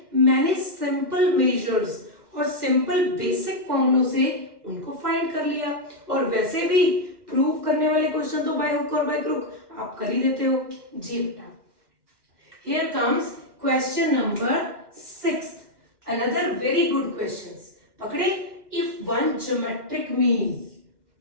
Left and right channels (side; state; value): left; late; 2.1 ms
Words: मैंने सिंपल मेजर्स और सिंपल बेसिक फॉर्मूलों से उनको फाइंड कर लिया, और वैसे भी प्रूव करने वाले क्वेश्चन तो बाय हुक और बाय क्रुक आप कर ही देते हो। जी बेटा, here comes question number 6th, another very good questions। पकड़े, if one geometric mean